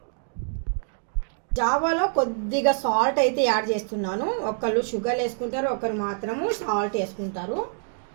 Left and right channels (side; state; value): left; silent; digital silence